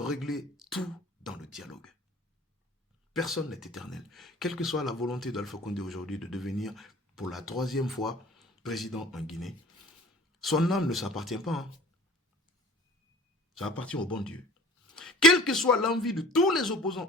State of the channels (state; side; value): normal; both; correlation 0.46